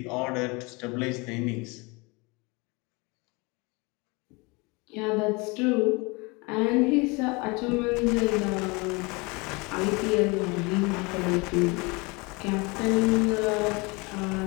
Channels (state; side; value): quieter; right; 27.2 dB